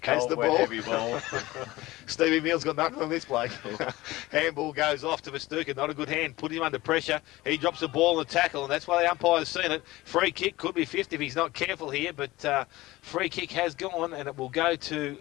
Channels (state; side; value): quieter; right; 18.8 dB